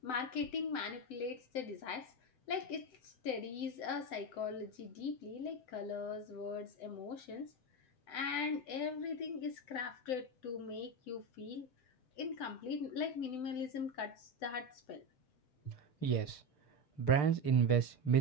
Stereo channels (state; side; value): late; right; 7.8 ms